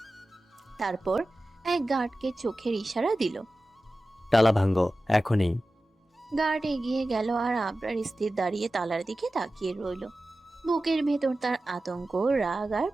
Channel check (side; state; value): both; normal; correlation 0.95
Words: তারপর এক গার্ডকে চোখের ইশারা দিল। তালা ভাঙ্গো এখনই। গার্ড এগিয়ে গেল আর আবরার স্থির দাঁড়িয়ে তালার দিকে তাকিয়ে রইল। বুকের ভেতর তার আতঙ্ক, রাগ আর